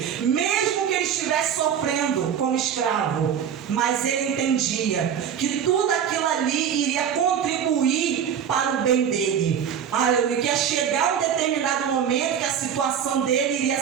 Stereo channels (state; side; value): quieter; left; 8.4 dB